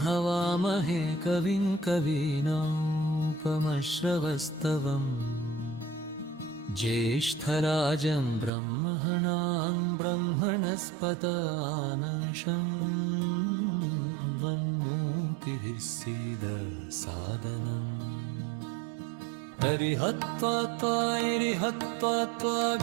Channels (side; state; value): left; drops out; at 8.5 s